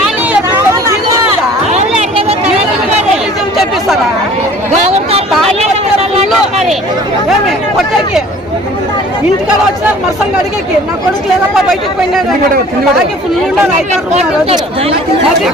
చెప్పిస్తారా కొట్టేకి? ఇంటికాడ వచ్చినారు మరసంగా అడిగేకి. నా కొడుకు లేదప్ప బయటకు పోయినాడు. ఫుల్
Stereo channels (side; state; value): both; normal; correlation 0.49